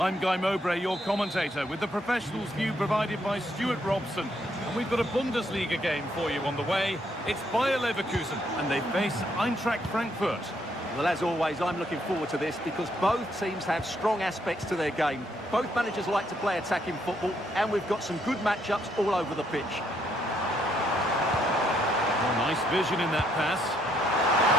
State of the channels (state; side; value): normal; both; correlation 0.73